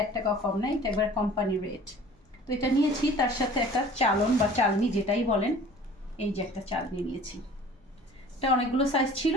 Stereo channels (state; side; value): normal; both; correlation 0.47